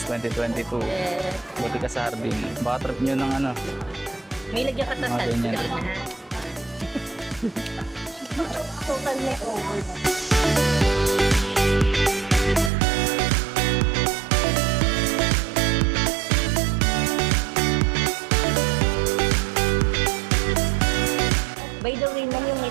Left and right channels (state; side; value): drops out; left; at 12.7 s